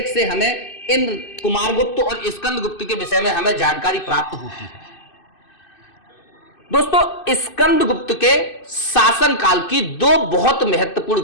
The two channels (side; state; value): right; late; 2.6 ms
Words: से हमें इन कुमारगुप्त और स्कंदगुप्त के विषय में हमें जानकारी प्राप्त होती है। दोस्तों, स्कंदगुप्त के शासन काल की दो बहुत महत्वपूर्ण